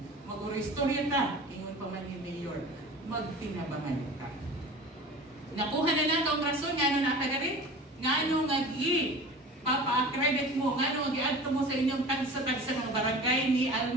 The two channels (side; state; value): both; normal; correlation 0.38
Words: Mag-uristorya ta, ingon pa man ni Mayor, magtinabangan ka. Nakuha na lang kung rason, nga na rin? Nga nga papa-accredit mo, nga gi-adto mo sa inyong tagsa-tagsa ng barangay ni